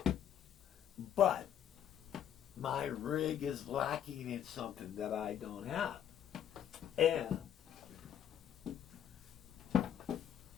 But my rig is lacking in something that I don't have. And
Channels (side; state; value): right; quieter; 9.7 dB